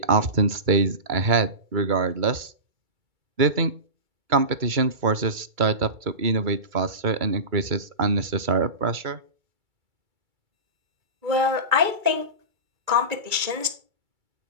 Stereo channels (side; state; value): left; late; 2.3 ms